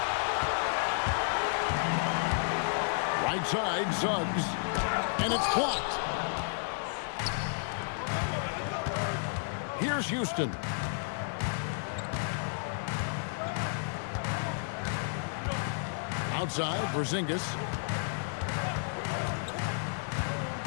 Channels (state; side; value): silent; right; 56 dB below the other